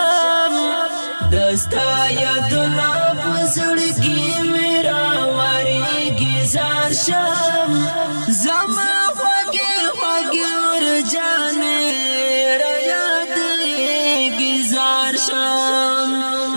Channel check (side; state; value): both; inverted; correlation -1.00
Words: دستا یادنا پزړګي میرا وریږي زار شم زما خوږي خوږي ورجانې را یادېږي زار شم